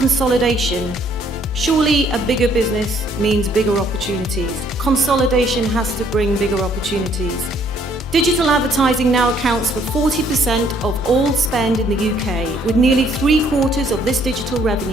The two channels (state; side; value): normal; both; correlation 0.65